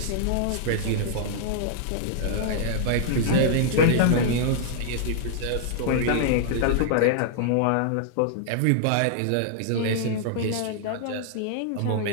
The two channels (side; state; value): both; different; correlation -0.01